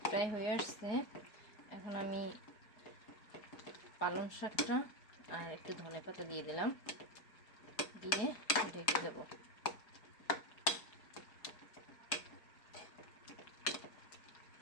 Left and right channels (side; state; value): right; late; 4.7 ms